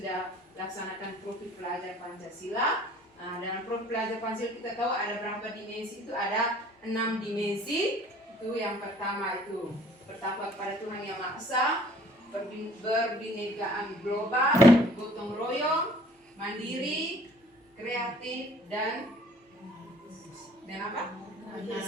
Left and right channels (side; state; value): both; normal; correlation 0.55